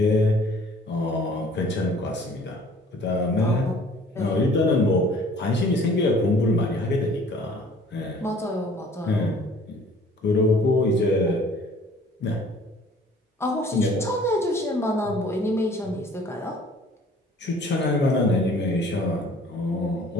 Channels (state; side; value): normal; both; correlation 0.53